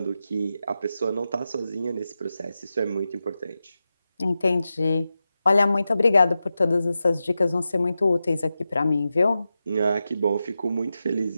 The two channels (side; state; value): both; inverted; correlation -0.91